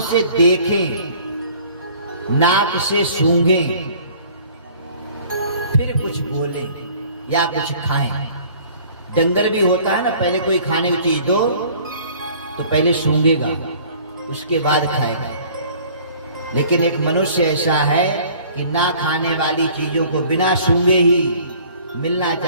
से देखें, नाक से सूंघें, फिर कुछ बोलें या कुछ खाएं। डंगर भी होता है ना, पहले कोई खाने की चीज दो तो पहले सूंघेगा, उसके बाद खाएगा। लेकिन एक मनुष्य ऐसा है कि ना खाने वाली चीजों को बिना सूंघे ही मिलना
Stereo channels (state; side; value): inverted; both; correlation -0.52